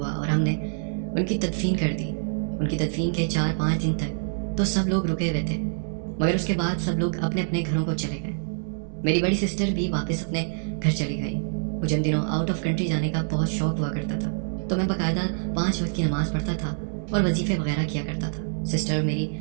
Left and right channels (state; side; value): silent; left; 61 dB below the other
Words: और हमने उनकी तदफीन कर दी। उनकी तदफीन के 4-5 दिन तक तो सब लोग रुके हुए थे, मगर उसके बाद सब लोग अपने अपने घरों को चले गए। मेरी बड़ी सिस्टर भी वापस अपने घर चली गई। मुझे उन दिनों आउट ऑफ कंट्री जाने का बहुत शौक हुआ करता था, तो मैं बाकायदा 5 वक्त की नमाज़ पढ़ता था और वजीफ़े वगैरह किया करता था। सिस्टर मेरी